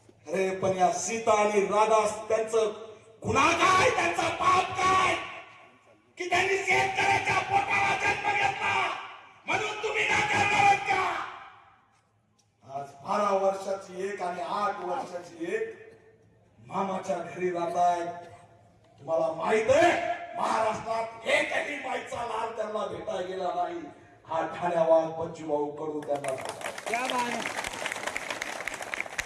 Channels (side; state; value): both; identical; correlation 1.00